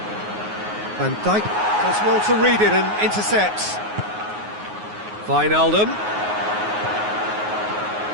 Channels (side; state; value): left; late; 9.5 ms